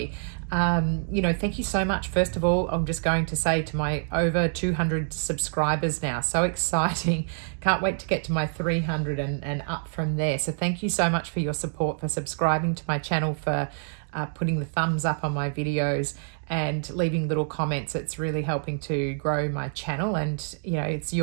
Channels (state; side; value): silent; left; digital silence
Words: Thank you so much. First of all, I'm just going to say to my over 200 subscribers now, so exciting. Can't wait to get to my 300 and up from there. So thank you so much for your support, for subscribing to my channel, for putting the thumbs up on my videos and leaving little comments. It's really helping to grow my channel, and it's